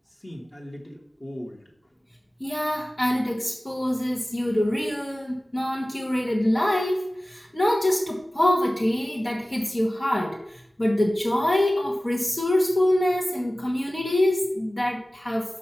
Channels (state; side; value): normal; both; correlation 0.97